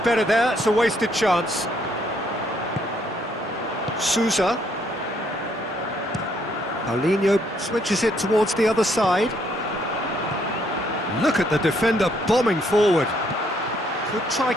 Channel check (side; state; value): both; normal; correlation 0.69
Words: there. It's a wasted chance. Sousa. Paulinho switches it towards the other side. Look at the defender bombing forward. Could try